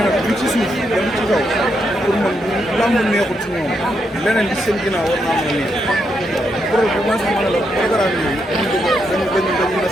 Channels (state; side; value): normal; both; correlation 0.80